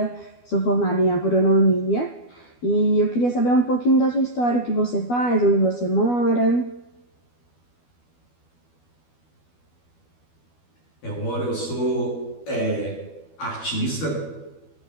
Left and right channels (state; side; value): late; right; 12 ms